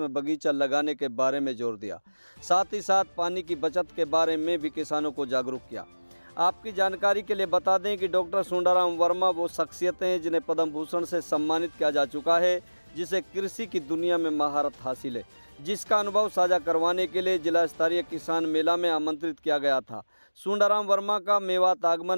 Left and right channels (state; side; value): inverted; both; correlation -1.00